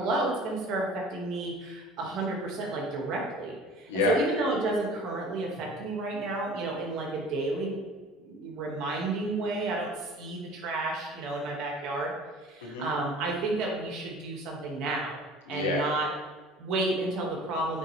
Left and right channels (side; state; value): both; normal; correlation 0.45